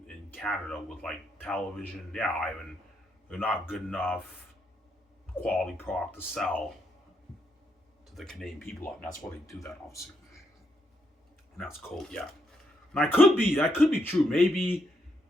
Canada with like television. Yeah, Ivan. They're not good enough quality product to sell to the Canadian people. And that's why they do that, obviously. And that's cool, yeah. And that could be true. Maybe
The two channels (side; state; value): both; normal; correlation 0.78